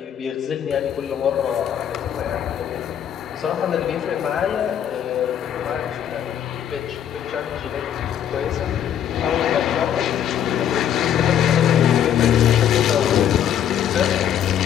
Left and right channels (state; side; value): quieter; right; 9.7 dB